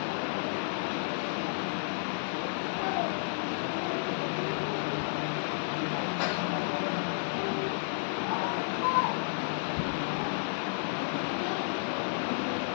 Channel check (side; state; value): right; silent; digital silence